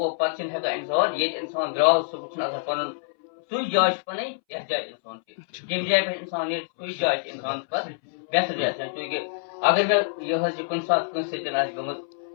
پتہٕ چھِنہٕ ہٮ۪کان اِنسان ییٚتہِ اِنسان درٛاو سُہ چھُنہٕ آسان پنُن سُے جاے چھِ پنٕنۍ یتھ جایہِ اِنسان چھِ ییٚمہِ جایہِ پٮ۪ٹھ اِنسان نیرِ سُے جاے چھِ اِنسانس پتہٕ بہتر جاے چوٗنٛکہِ اگر مےٚ یہِ حظ یہِ کُنہِ ساتہٕ کٲنٛسہِ سۭتۍ آسہِ گٔمٕژ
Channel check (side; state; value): right; silent; 61 dB below the other